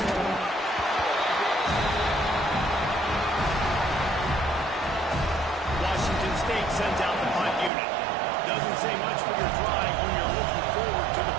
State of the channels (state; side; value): drops out; left; at 7.7 s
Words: Washington State sends out the punt unit. Doesn't say much for your drive when you're looking forward to the